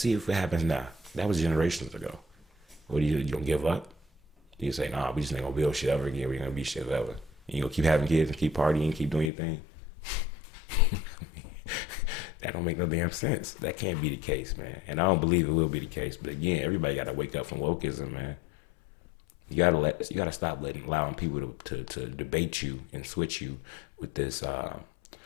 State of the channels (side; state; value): right; drops out; at 9.3 s